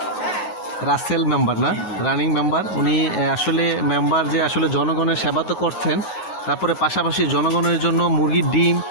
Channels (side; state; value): right; late; 9.5 ms